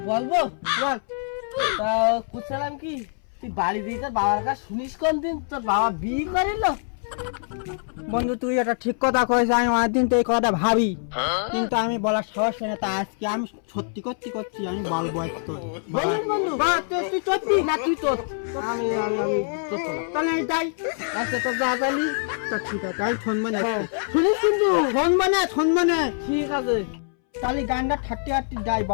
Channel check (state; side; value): silent; right; 62 dB below the other